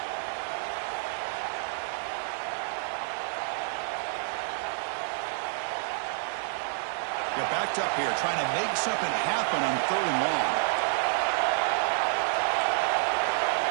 They're backed up here, trying to make something happen on 3rd and long.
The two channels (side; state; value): left; silent; digital silence